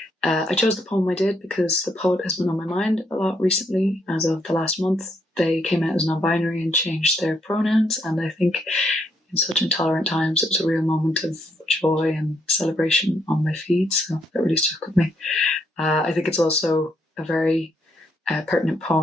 I chose the poem I did because the poet has been on my mind a lot recently. As of the last month, they came out as non-binary and changed their pronouns, and I think in such intolerant times it was a real moment of joy and celebration on my feed, so that really stuck with me. I think it's also a very pertinent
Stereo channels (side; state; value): both; normal; correlation 0.74